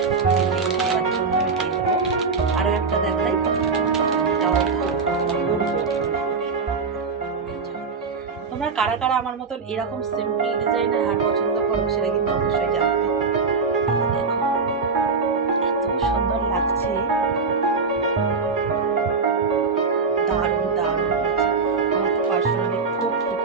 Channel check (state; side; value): quieter; left; 4.7 dB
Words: লিঙ্ক দেওয়ার জন্য আমি দিয়ে দেবো। আরও একটা দেখাই, তোমরা কারা কারা আমার মতন এরকম সিম্পল ডিজাইনের হার পছন্দ করো, সেটা কিন্তু অবশ্যই জানাবে। দেখো এত সুন্দর লাগছে, দারুণ দারুণ হয়েছে। আমার তো পার্সোনালি খুব খুব